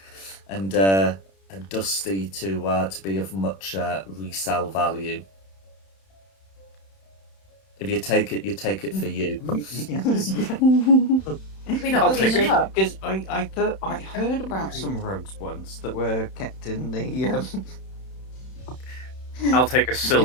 dusty to be of much resale value. If you take it, you take it for you. Yes. We not Okay, clean up. because I thought I heard about some rugs once that were kept in the I'll take a in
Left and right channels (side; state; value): right; late; 31 ms